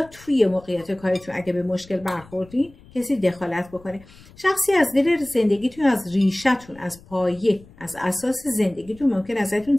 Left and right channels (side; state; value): left; noise; rumble, 24 dB below the sound